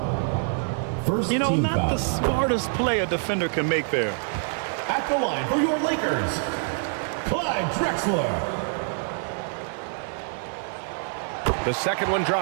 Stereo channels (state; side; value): silent; left; 61 dB below the other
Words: First team foul. Not the smartest play a defender can make there. At the line for your Lakers, Clyde Drexler. The second one